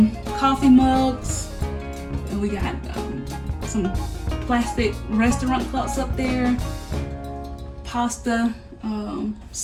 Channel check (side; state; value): both; identical; correlation 1.00